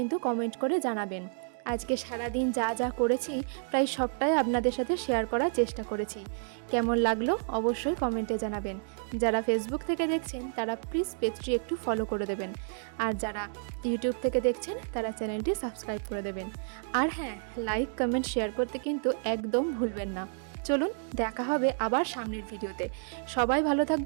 কমেন্ট করে জানাবেন। আজকে সারাদিন যা যা করেছি প্রায় সবটাই আপনাদের সাথে শেয়ার করার চেষ্টা করেছি। কেমন লাগলো অবশ্যই কমেন্টে জানাবেন। যারা ফেসবুক থেকে দেখছেন তারা প্লিজ পেজটি একটু ফলো করে দেবেন, আর যারা ইউটিউব থেকে দেখছেন তারা চ্যানেলটি সাবস্ক্রাইব করে দেবেন। আর হ্যাঁ, লাইক, কমেন্ট, শেয়ার করতে কিন্তু একদম ভুলবেন না। চলুন দেখা হবে আবার সামনের ভিডিওতে। সবাই ভালো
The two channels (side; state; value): left; silent; 57 dB below the other